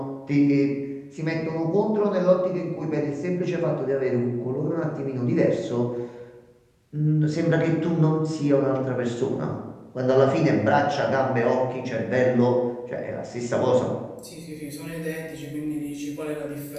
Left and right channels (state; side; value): identical; both; correlation 1.00